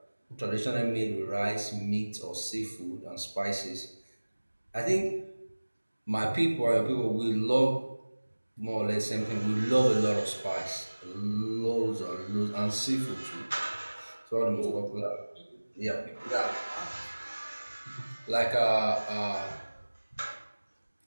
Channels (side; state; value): both; inverted; correlation -1.00